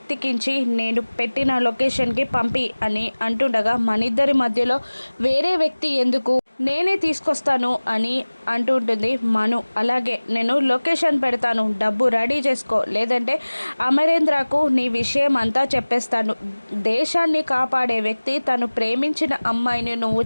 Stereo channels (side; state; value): both; inverted; correlation -1.00